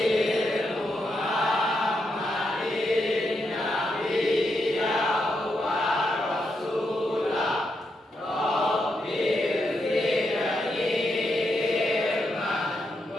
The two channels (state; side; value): normal; both; correlation 0.82